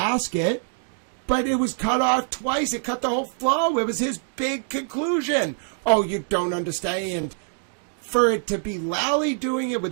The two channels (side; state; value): left; silent; digital silence